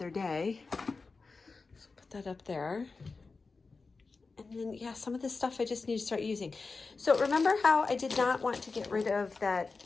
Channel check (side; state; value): right; quieter; 4.2 dB